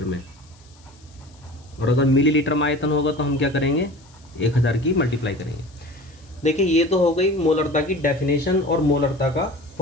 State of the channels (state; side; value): noise; left; hiss, 29 dB below the sound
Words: में। और अगर मिलीलीटर में आयतन होगा तो हम क्या करेंगे? 1000 की मल्टीप्लाई करेंगे। देखिए, ये तो हो गई मोलरता की डेफिनेशन और मोलरता का